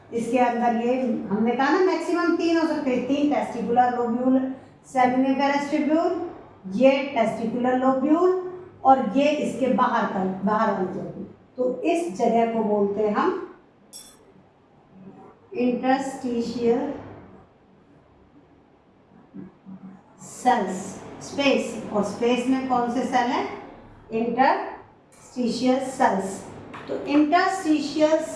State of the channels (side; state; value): both; identical; correlation 1.00